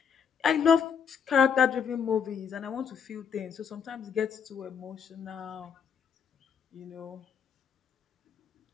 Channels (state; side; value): quieter; right; 6.9 dB